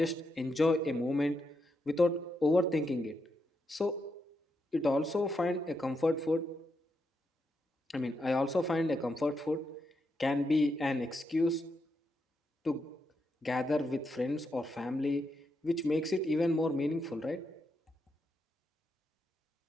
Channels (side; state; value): both; normal; correlation 0.82